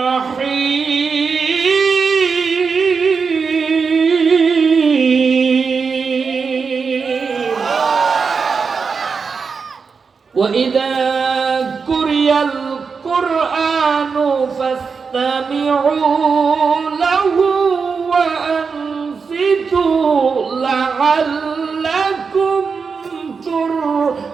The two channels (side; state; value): left; quieter; 5.3 dB